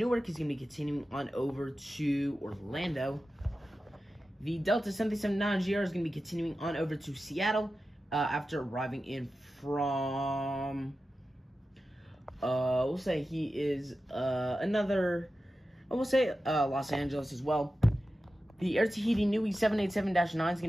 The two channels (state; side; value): normal; both; correlation 0.93